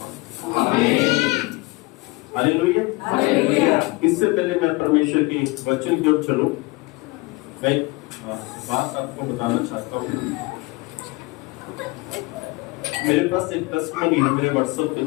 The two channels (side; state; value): right; quieter; 24.4 dB